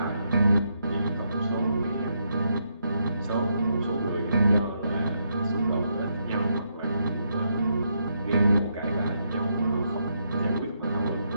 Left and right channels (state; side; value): inverted; both; correlation -0.78